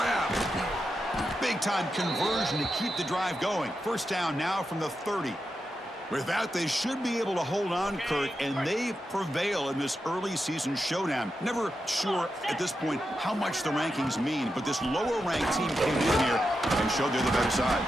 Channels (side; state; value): both; normal; correlation 0.88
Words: Big-time conversion to keep the drive going. First down now from the 30. With that, they should be able to hold on, Kurt, and they prevail in this early season showdown. Never sure at this point how much the rankings mean, but this lower-ranked team came in here and showed they're the better side.